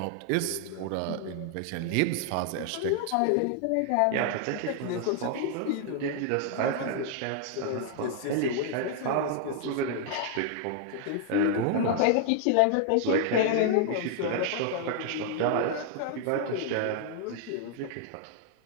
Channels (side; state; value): both; different; correlation 0.00